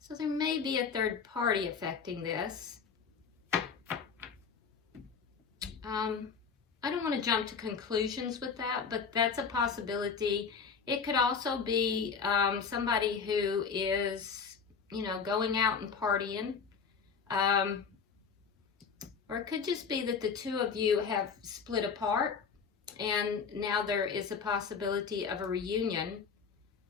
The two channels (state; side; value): quieter; right; 5.9 dB